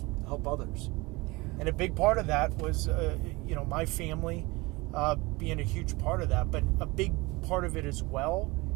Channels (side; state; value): left; quieter; 23.3 dB